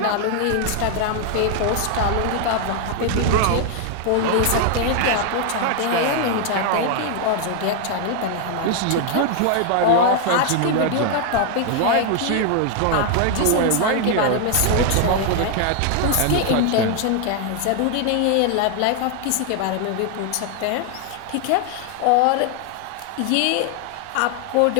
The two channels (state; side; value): different; both; correlation 0.00